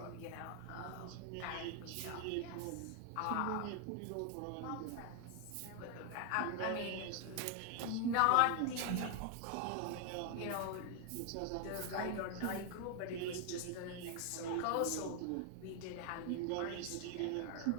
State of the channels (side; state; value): both; different; correlation 0.00